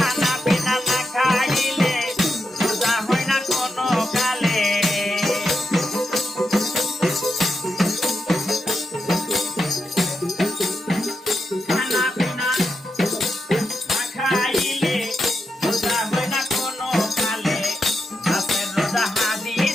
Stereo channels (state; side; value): normal; both; correlation 0.86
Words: পিনা না খাইলে রোজা হয় না কোনো কালে। খানা পিনা না খাইলে রোজা হয় না কোনো কালে, রাতের রোজা